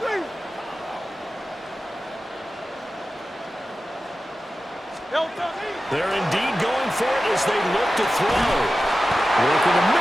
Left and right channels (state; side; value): normal; both; correlation 0.94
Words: They're indeed going for it as they look to throw. Work in the